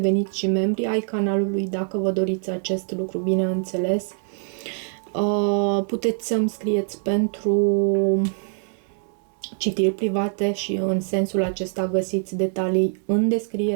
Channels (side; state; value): left; silent; 63 dB below the other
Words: și membri ai canalului dacă vă doriți acest lucru, bineînțeles. Puteți să-mi scrieți pentru citiri private și în sensul acesta găsiți detalii în